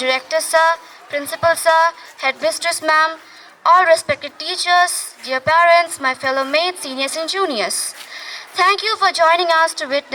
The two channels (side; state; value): both; identical; correlation 1.00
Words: Sir, Principal Sir, Headmistress Ma'am, all respected teachers, dear parents, my fellow mates, seniors and juniors. Thank you for joining us to